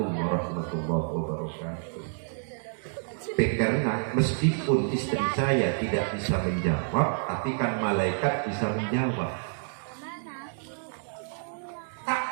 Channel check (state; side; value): silent; left; digital silence